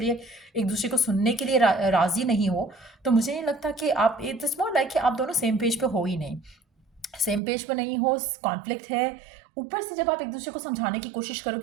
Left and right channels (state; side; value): drops out; left; at 7.4 s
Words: एक दूसरे को सुनने के लिए राजी नहीं हो, तो मुझे नहीं लगता कि आप, इट्स मोर लाइक कि आप दोनों सेम पेज पे हो ही नहीं, सेम पेज पर नहीं हो, कॉन्फ्लिक्ट है। ऊपर से जब आप एक दूसरे को समझाने की कोशिश